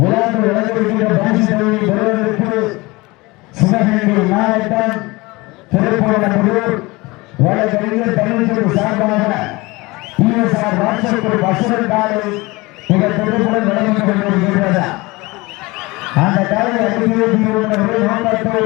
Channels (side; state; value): right; quieter; 22.9 dB